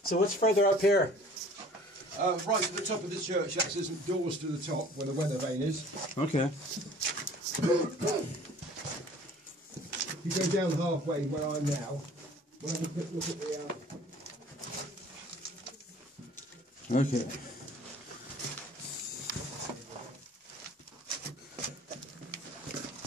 So what's further up here? Right at the top of the church, there's some doors to the top where the weather vane is. Okay. You go down halfway where I'm now. We'll have a quick look at the. Okay.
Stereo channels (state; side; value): normal; both; correlation 0.50